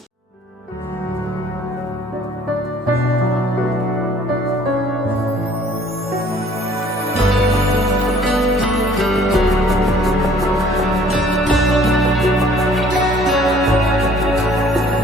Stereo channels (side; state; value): both; normal; correlation 0.56